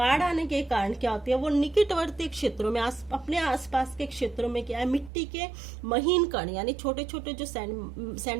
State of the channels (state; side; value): drops out; left; at 5.1 s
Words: आने के कारण क्या होती है, वो निकटवर्ती क्षेत्रों में अपने आसपास के क्षेत्रों में क्या है, मिट्टी के महीन कण यानी छोटे छोटे जो